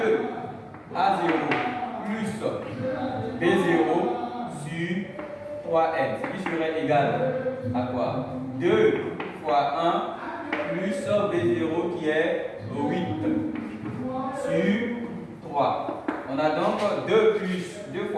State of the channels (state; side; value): identical; both; correlation 1.00